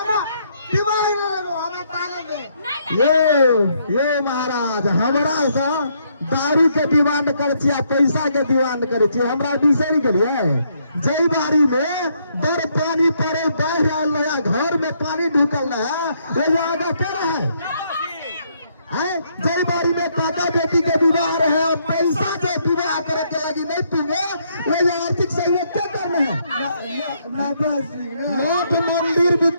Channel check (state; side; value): inverted; both; correlation -0.72